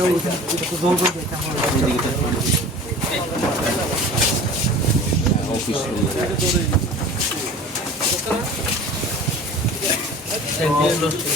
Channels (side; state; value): both; normal; correlation 0.41